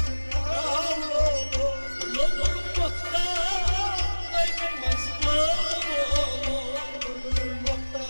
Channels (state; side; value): inverted; both; correlation -1.00